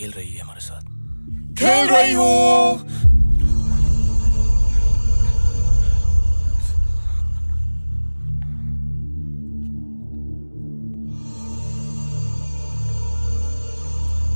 रही है हमारे साथ। खेल रही हूँ।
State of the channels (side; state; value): both; inverted; correlation -1.00